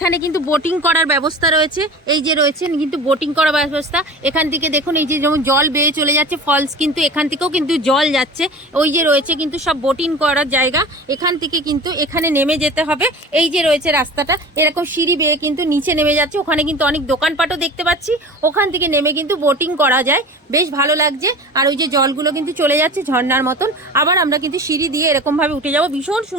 কিন্তু বোটিং করার ব্যবস্থা রয়েছে। এই যে রয়েছে কিন্তু বোটিং করার ব্যবস্থা। এখান থেকে দেখুন এই যে যেমন জল বেয়ে চলে যাচ্ছে ফলস, কিন্তু এখান থেকেও কিন্তু জল যাচ্ছে। ওই যে রয়েছে কিন্তু সব বোটিং করার জায়গা। এখান থেকে কিন্তু এখানে নেমে যেতে হবে। এই যে রয়েছে রাস্তাটা এরকম সিঁড়ি বেয়ে কিন্তু নিচে নেমে যাচ্ছে। ওখানে কিন্তু অনেক দোকানপাটও দেখতে পাচ্ছি, ওখান থেকে নেমে কিন্তু বোটিং করা যায়, বেশ ভালো লাগছে। আর ওই যে জলগুলো কিন্তু চলে যাচ্ছে ঝর্ণার মতন। আবার আমরা কিন্তু সিঁড়ি দিয়ে এরকমভাবে উঠে যাব। ভীষণ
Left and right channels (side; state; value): both; normal; correlation 0.36